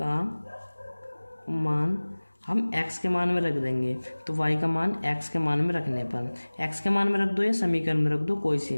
मान हम x के मान में रख देंगे, तो y का मान x के मान में रखने पर x के मान में रख दो या समीकरण में रख दो, कोई सी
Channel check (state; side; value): inverted; both; correlation -1.00